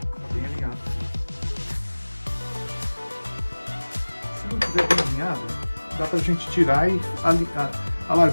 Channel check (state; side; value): inverted; both; correlation -1.00